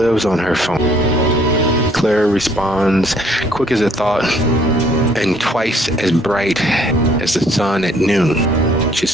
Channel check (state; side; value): normal; both; correlation 0.62